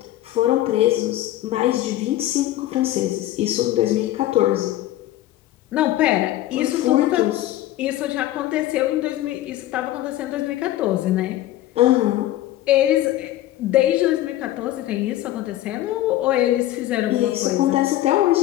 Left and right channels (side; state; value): right; quieter; 14.5 dB